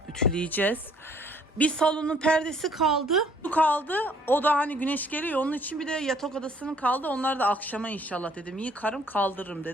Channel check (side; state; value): both; normal; correlation 0.61